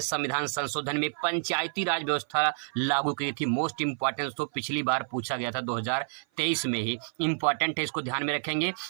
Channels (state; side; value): silent; left; 55 dB below the other